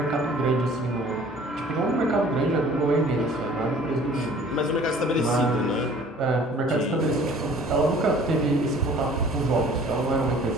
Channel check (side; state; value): both; normal; correlation 0.51